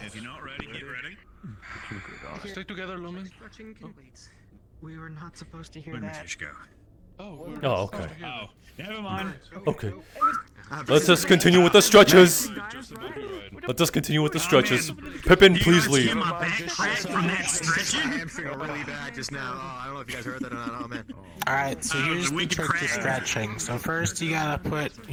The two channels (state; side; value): identical; both; correlation 1.00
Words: If you're not ready, get ready. Stay together, Lumen. Stretching complete. We were not supposed to hear Where did that. Fish go? Oh, okay. Oh, never mind. Okay. Let's just continue with the stretches. Let us continue with the stretches. Pippin, please leave. I am feeling really bad just now. Oh, I don't know if you guys heard that or not. Oh, man. Alright, so here's the trick to stretching. So first you gotta put